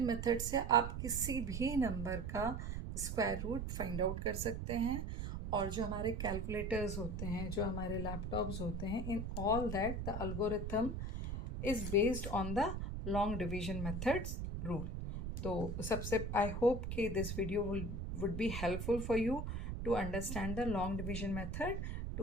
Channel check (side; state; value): right; noise; rumble, 4 dB below the sound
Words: method से आप किसी भी number का square root find out कर सकते हैं. और जो हमारे कैलकुलेटर्स होते हैं, जो हमारे लैपटॉप्स होते हैं, in all that the algorithm is based on the long division methods rule. तो सबसे आई होप कि this video would be helpful for you to understand the long division method